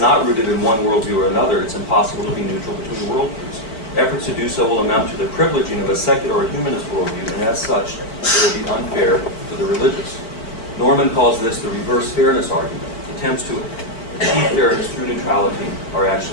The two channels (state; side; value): late; right; 4.4 ms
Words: rooted in one worldview or another, it's impossible to be neutral between worldviews. Efforts to do so will amount to the privileging of a secular or humanist worldview, and as such, it will be unfair to the religious. Norman calls this the reverse fairness argument. Attempts to achieve fairness through neutrality are